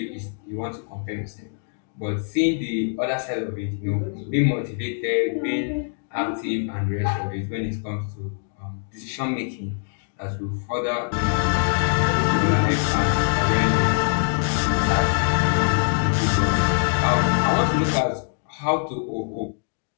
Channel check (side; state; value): right; silent; digital silence